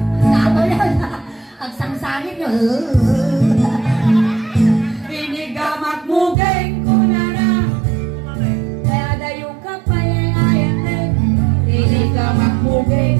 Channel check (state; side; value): drops out; left; at 6.4 s